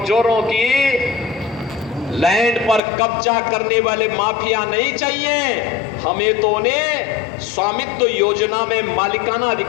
की लैंड पर कब्जा करने वाले माफिया नहीं चाहिए, हमें तो उन्हें स्वामित्व योजना में मालिकाना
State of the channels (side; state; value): right; drops out; at 2.8 s